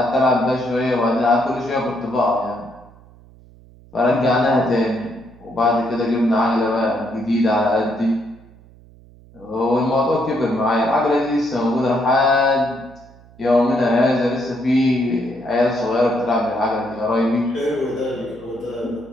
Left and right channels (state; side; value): noise; right; hum, 24 dB below the sound